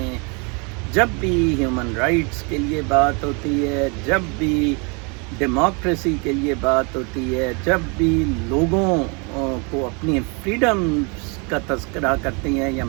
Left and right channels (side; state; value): left; quieter; 32.6 dB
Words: جب بھی ہیومن رائٹس کے لیے بات ہوتی ہے، جب بھی ڈیموکریسی کے لیے بات ہوتی ہے، جب بھی لوگوں کو اپنی فریڈمز کا تذکرہ کرتے ہیں، یا